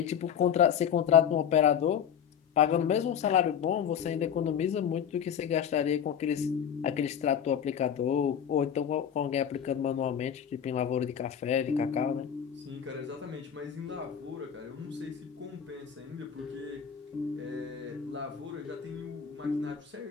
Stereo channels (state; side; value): quieter; right; 8.3 dB